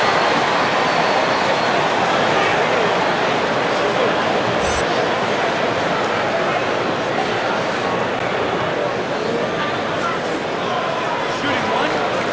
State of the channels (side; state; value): left; noise; hum, 29 dB below the sound